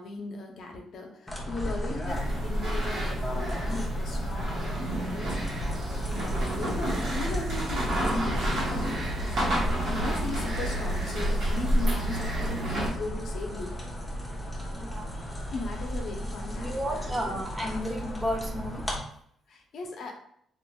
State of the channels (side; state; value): both; normal; correlation 0.80